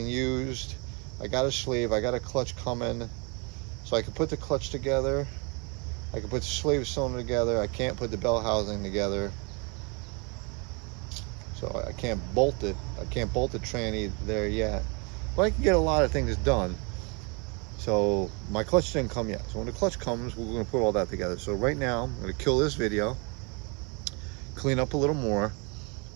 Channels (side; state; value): left; quieter; 31.7 dB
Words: used. I got a sleeve. I got a clutch coming, so I can put the clutch together. I can put the slave cylinder together. I can't put the bell housing together. So I can't bolt it. I can't bolt the tranny there yet. But I can get a lot of things done. So my clutch didn't come yet. So when the clutch comes, we're going to put all that together. So right now, I'm going to kill this video, clean up a little more,